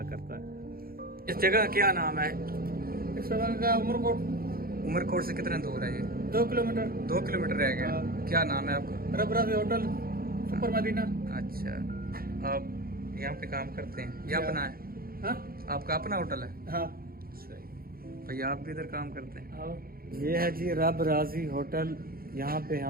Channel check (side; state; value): left; late; 0.43 ms